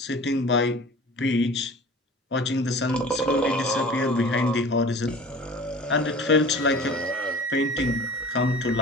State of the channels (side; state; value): both; normal; correlation 0.41